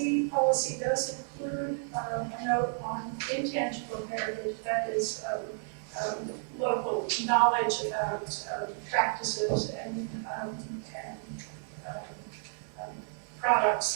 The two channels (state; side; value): silent; left; digital silence